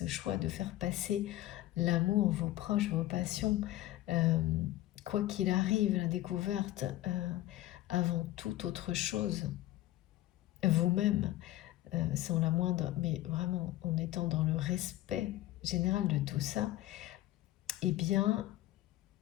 choix de faire passer l'amour, vos proches, vos passions, quoi qu'il arrive, la découverte avant toute autre chose, vous-même, sans la moindre, mais vraiment en étant dans le respect général de tout ça, eh bien,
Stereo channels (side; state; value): right; quieter; 15.6 dB